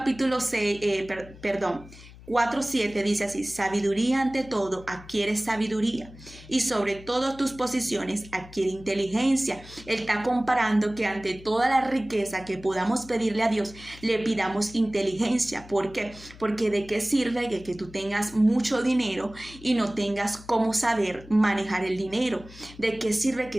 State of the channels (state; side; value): noise; left; hum, 19 dB below the sound